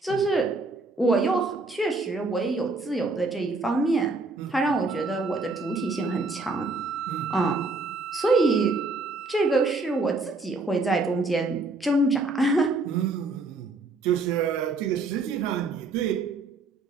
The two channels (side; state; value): left; quieter; 3.4 dB